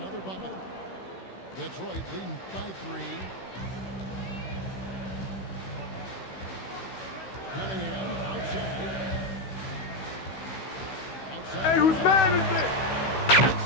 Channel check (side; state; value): right; late; 16 ms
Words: bucket. Detroit leading by 3. Cunningham outside. Hey, whose man is it? That's